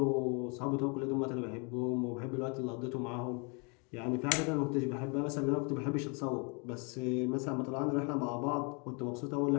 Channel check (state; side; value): quieter; right; 34.0 dB